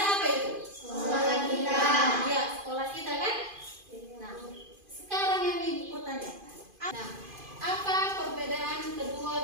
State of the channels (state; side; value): late; left; 2.5 ms